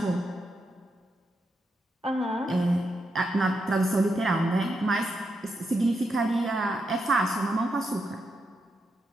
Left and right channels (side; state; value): both; normal; correlation 0.83